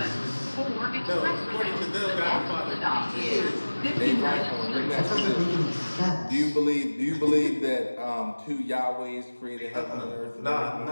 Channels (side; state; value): both; inverted; correlation -1.00